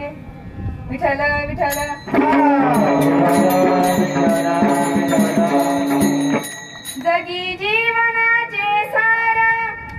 विठ्ठल विठ्ठल. जगी जीवनाचे सार,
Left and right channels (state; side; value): identical; both; correlation 1.00